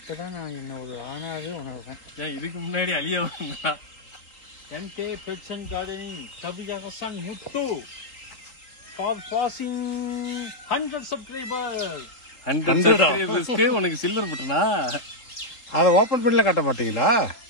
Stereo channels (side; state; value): right; late; 3.8 ms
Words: நான் என்ன ஒரு ஆனாவே உணர்றேன். ஏன் இதுக்கு முன்னாடி அழிய வந்தா? MK kitchen gardening Kaviyarasan Muthu for passing 100 subscribers. 100 subscribersக்கு உனக்கு சில்வர் பட்டனா? அதை ஓபன் பண்ணல காட்ட மாட்டீங்களா?